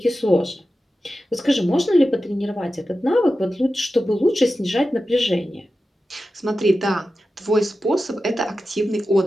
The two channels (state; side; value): normal; both; correlation 0.93